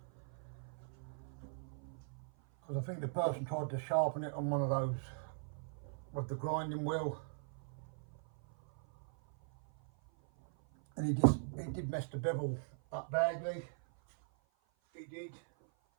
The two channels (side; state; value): left; silent; 51 dB below the other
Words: Because I think the person tried to sharpen it on one of those with the grinding wheel. And he did mess the bevel up badly. He did.